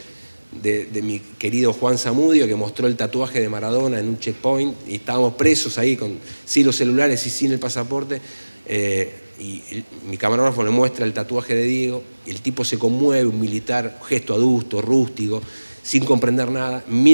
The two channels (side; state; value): both; inverted; correlation -1.00